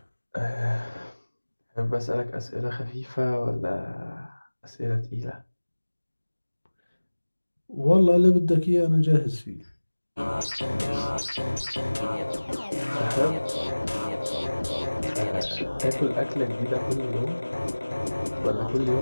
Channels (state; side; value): inverted; both; correlation -1.00